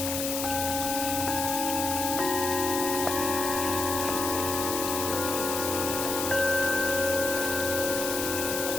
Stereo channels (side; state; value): left; noise; hiss, 3 dB below the sound